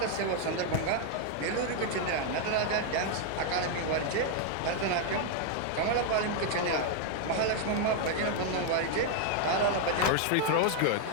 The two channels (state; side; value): different; both; correlation 0.00